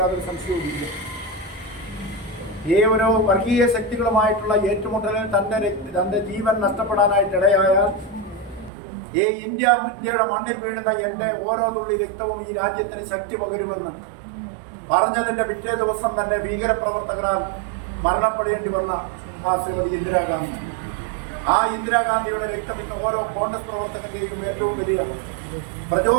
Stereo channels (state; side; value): drops out; left; at 8.7 s